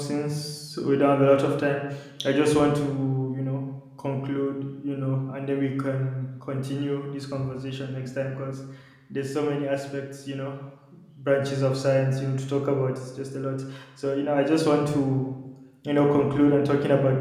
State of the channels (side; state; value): both; identical; correlation 1.00